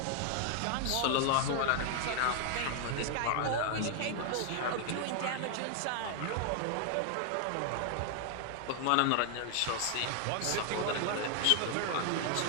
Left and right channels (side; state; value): both; different; correlation 0.00